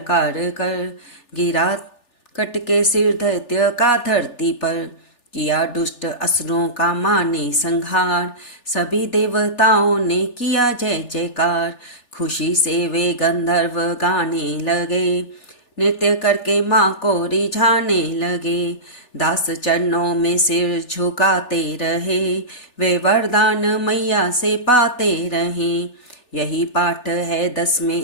कर, गिरा कट के सिर दैत्य का धरती पर। किया दुष्ट असुरों का माने संहार, सभी देवताओं ने किया जय जयकार। खुशी से वे गंधर्व गाने लगे, नृत्य करके माँ को रिझाने लगे। दास चरणों में सिर झुकाते रहे, वे वरदान मैया से पाते रहे। यही पाठ है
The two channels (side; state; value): right; late; 3.4 ms